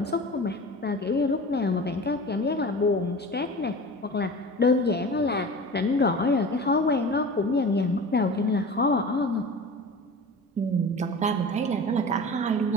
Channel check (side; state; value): both; normal; correlation 0.36